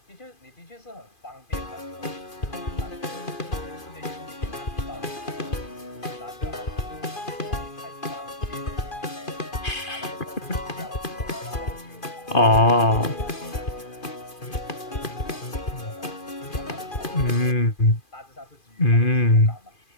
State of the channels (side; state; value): right; late; 2.4 ms